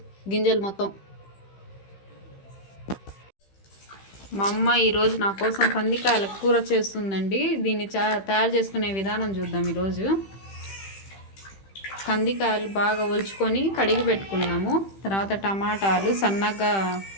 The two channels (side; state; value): right; late; 15 ms